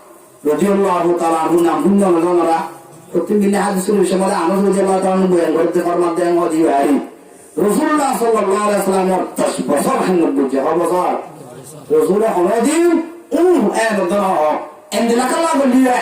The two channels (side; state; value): both; identical; correlation 1.00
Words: رضي الله تعالى عنه নাম আমরা প্রতিদিন হাদিসের বিষয়ে আনস রাদিয়াল্লাহু তাআলা আনহু বয়ান করতে ফরমাতে हैं मोदी भाई রাসূলুল্লাহ সাল্লাল্লাহু আলাইহি ওয়াসাল্লাম 10 বছর খেদমত করছে বছর রাসূল হদিন এন দনা এন্দিলা কালা বলিয়া